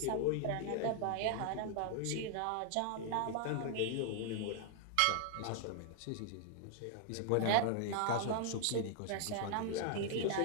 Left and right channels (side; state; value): both; different; correlation 0.00